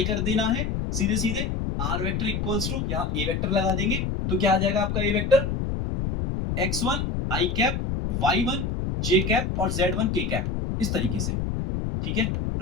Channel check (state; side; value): noise; left; rumble, 1 dB below the sound